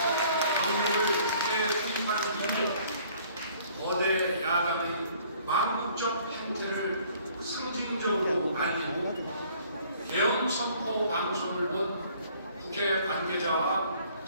병력을 국회에 투입하는 이유로 거대 야당의 망국적 행태를 상징적으로 알리고 대응 선포 방송을 본 국회 관계자와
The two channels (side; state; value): both; inverted; correlation -0.58